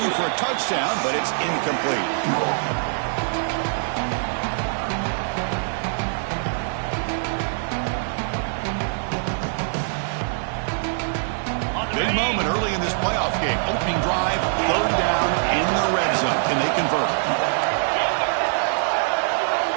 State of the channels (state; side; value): silent; left; digital silence